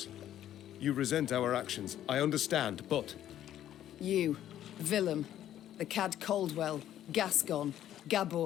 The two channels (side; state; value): right; quieter; 11.6 dB